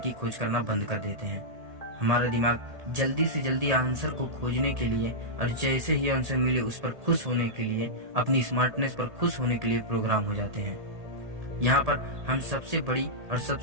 खोज करना बंद कर देते हैं। हमारा दिमाग जल्दी से जल्दी आंसर को खोजने के लिए और जैसे ही आंसर मिले उस पर खुश होने के लिए, अपनी स्मार्टनेस पर खुश होने के लिए प्रोग्राम हो जाते हैं। यहाँ पर हम सबसे बड़ी और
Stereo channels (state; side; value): late; left; 1.8 ms